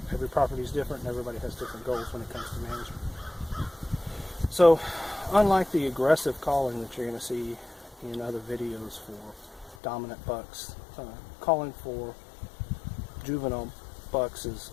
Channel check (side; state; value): right; drops out; at 9.8 s